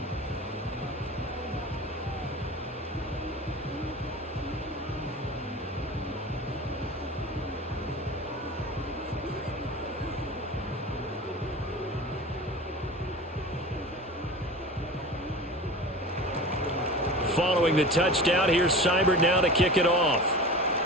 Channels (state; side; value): normal; both; correlation 0.34